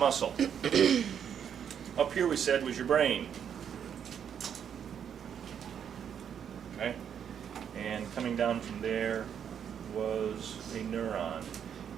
Up here we said was your brain. Okay? And coming down from there was a neuron.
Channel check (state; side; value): quieter; left; 8.3 dB